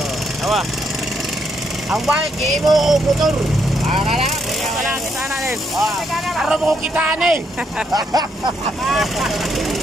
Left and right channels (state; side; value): normal; both; correlation 0.75